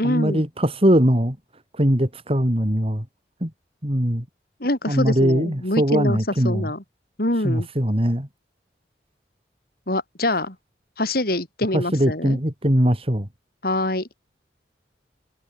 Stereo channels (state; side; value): normal; both; correlation 0.69